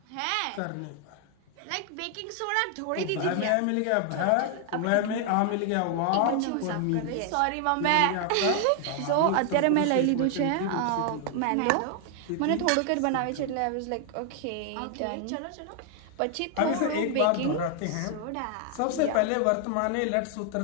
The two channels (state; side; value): different; both; correlation 0.00